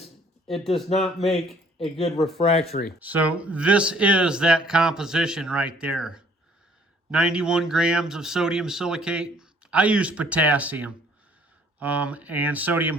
it does not make a good refractory. So this is that composition right there. 91 grams of sodium silicate. I use potassium and sodium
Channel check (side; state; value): both; normal; correlation 0.60